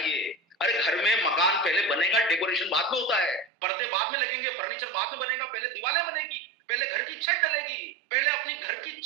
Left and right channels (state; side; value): drops out; left; at 3.5 s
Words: अरे घर में मकान पहले बनेगा, डेकोरेशन बाद में होता है, पर्दे बाद में लगेंगे, फर्नीचर बाद में बनेगा, पहले दीवारें बनेगी, पहले घर की छत डलेगी। पहले अपनी घर की